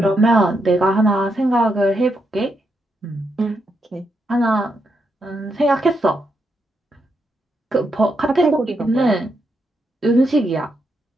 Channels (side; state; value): both; normal; correlation 0.81